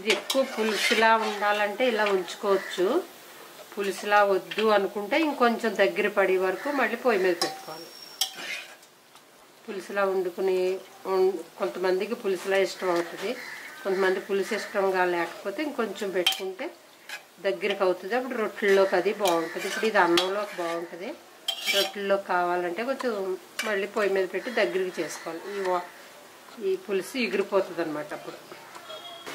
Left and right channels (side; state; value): both; identical; correlation 1.00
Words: ఎక్కువ పులుసులా ఉండాలంటే ఇలా ఉంచుకోవచ్చు. పులుసులా వద్దు అనుకుంటే ఇంకొంచెం దగ్గర పడే వరకు మళ్ళీ పొయ్యి మీద పెట్టుకోవాలి. పులుసులా వండుకుని కొంతమందికి పులుసులా ఇష్టం అవుతుంది, కొంతమంది పులుసు ఇష్టంగా లేకపోతే ఇంకొంచెం పెట్టుకుంటే దగ్గరికి అవుతుంది. అప్పుడు రొట్టెల్లోకి అది బాగుంటుంది. ఇప్పుడు ఇది అన్నంలోకి బాగుంటుంది. రొట్టెల్లోకి కావాలంటే కొంచెం మళ్ళీ పొయ్యి మీద పెట్టి దగ్గరికి చేసుకోవాలి. ఈ పులుసు ఎగిరిపోతుంది అన్నమాట. అప్పుడు